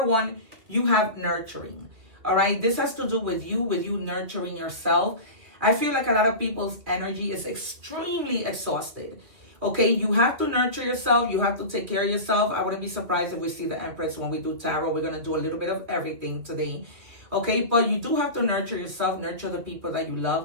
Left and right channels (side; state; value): left; late; 2.6 ms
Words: 1, you have nurturing. All right, this has to do with you nurturing yourself. I feel like a lot of people's energy is extremely exhausted. Okay, you have to nurture yourself. You have to take care of yourself. I wouldn't be surprised if we see the Empress when we do tarot. We're going to do a little bit of everything today. Okay, but you do have to nurture yourself, nurture the people that you